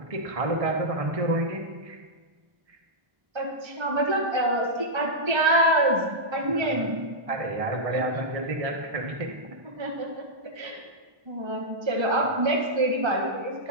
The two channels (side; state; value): left; late; 1.3 ms